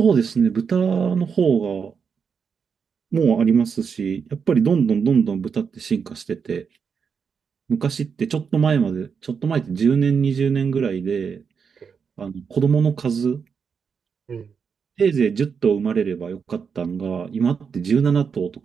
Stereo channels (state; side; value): quieter; left; 6.2 dB